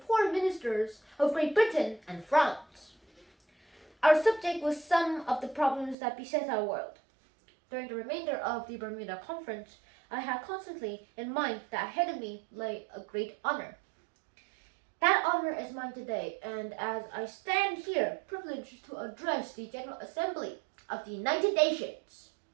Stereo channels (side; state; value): left; drops out; at 6.0 s